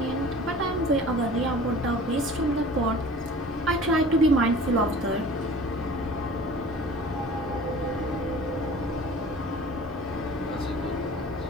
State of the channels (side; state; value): both; normal; correlation 0.44